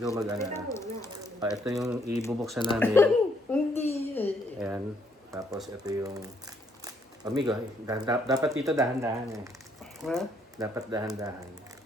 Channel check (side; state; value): both; normal; correlation 0.70